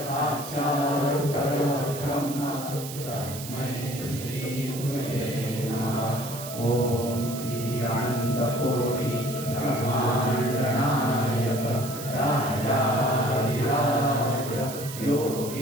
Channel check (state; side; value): noise; right; hiss, 11 dB below the sound